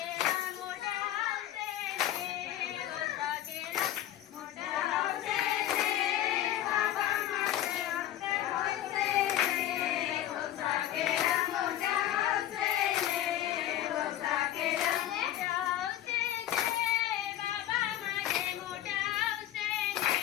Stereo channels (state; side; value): quieter; right; 12.7 dB